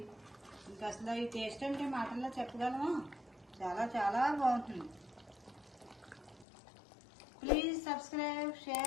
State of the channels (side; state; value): right; drops out; at 6.5 s